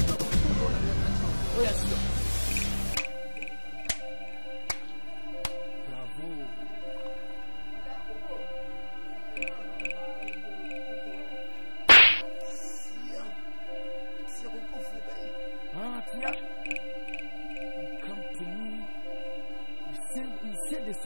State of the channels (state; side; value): inverted; both; correlation -1.00